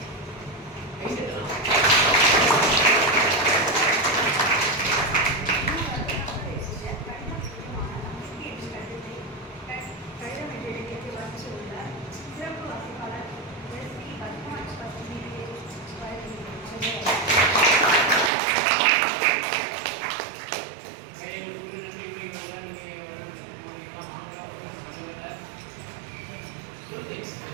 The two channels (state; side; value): drops out; left; at 18.3 s